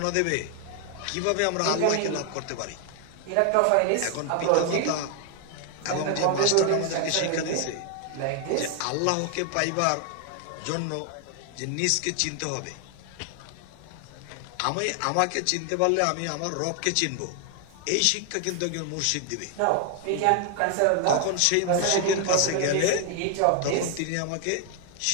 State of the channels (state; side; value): different; both; correlation 0.00